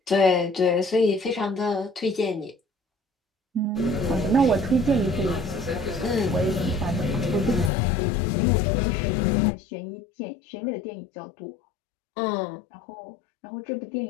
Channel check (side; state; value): right; drops out; at 7.7 s